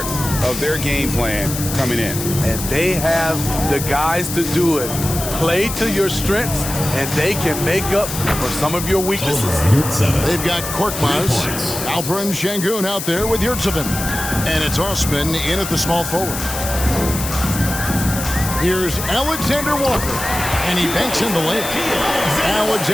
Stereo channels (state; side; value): noise; left; hiss, 6 dB below the sound